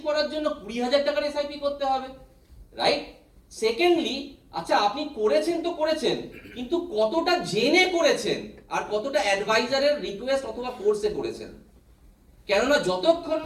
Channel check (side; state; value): both; identical; correlation 1.00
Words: করার জন্য 20,000 টাকার এসআইপি করতে হবে, রাইট? সেকেন্ডলি, আচ্ছা আপনি করেছেন তো করেছেন, কিন্তু কতটা জেনে করেছেন আর কতটা অ্যাডভাইজারের রিকোয়েস্ট অথবা ফোর্সে করেছেন? কেননা যতক্ষণ